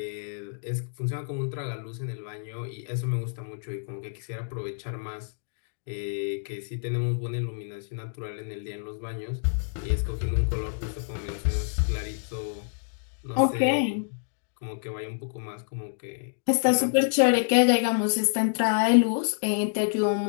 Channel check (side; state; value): right; silent; digital silence